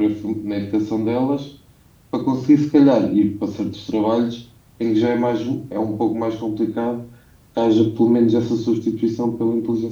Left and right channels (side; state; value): both; identical; correlation 1.00